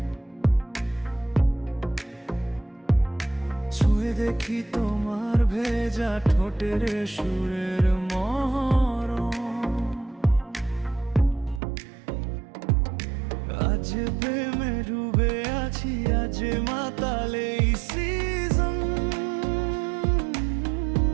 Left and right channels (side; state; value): left; drops out; at 11.6 s